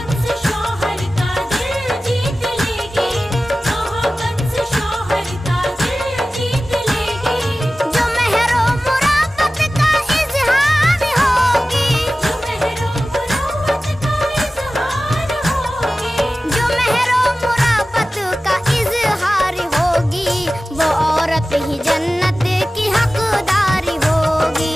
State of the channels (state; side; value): normal; both; correlation 0.96